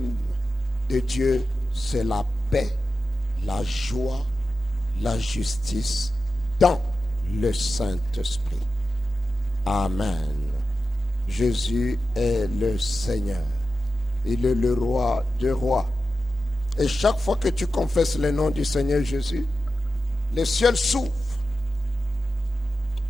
de Dieu, c'est la paix, la joie, la justice dans le Saint-Esprit. Amen. Jésus est le Seigneur. Il est le roi des rois. Et chaque fois que tu confesses le nom du Seigneur Jésus, le ciel s'ouvre.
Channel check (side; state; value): both; normal; correlation 0.92